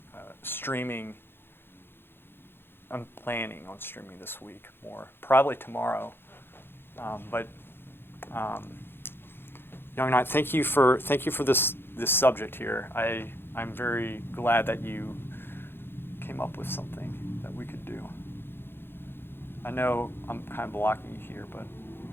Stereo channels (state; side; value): late; right; 0.10 ms